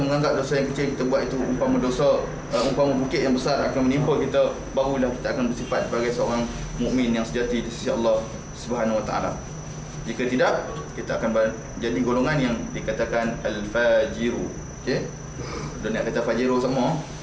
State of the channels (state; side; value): identical; both; correlation 1.00